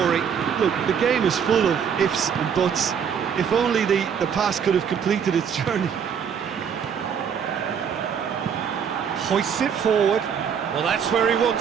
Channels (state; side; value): quieter; left; 7.5 dB